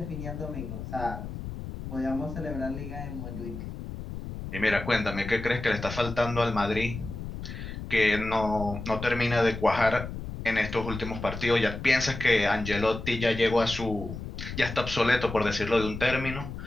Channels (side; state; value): left; noise; rumble, 8 dB below the sound